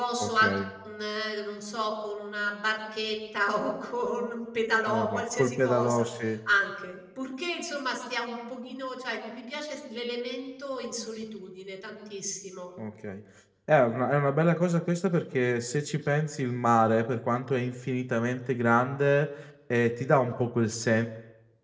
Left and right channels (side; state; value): both; identical; correlation 1.00